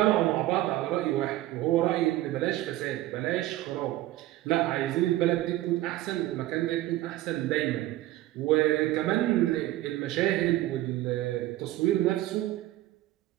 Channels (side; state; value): left; quieter; 15.6 dB